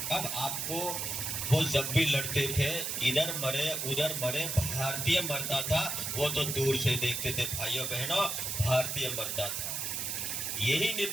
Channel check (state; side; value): noise; right; hiss, 2 dB below the sound